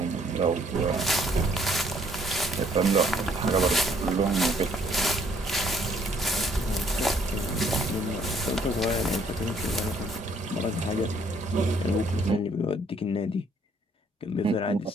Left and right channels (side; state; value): both; normal; correlation 0.65